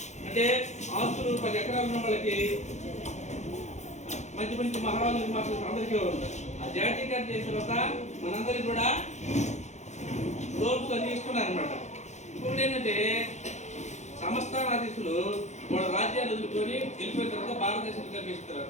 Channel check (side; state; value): right; late; 0.33 ms